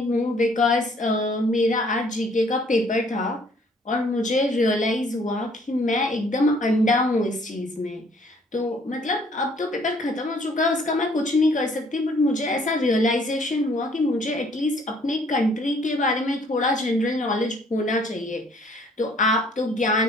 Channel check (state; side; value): normal; both; correlation 0.61